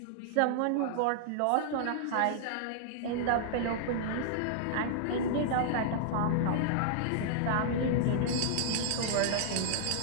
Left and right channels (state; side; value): different; both; correlation -0.01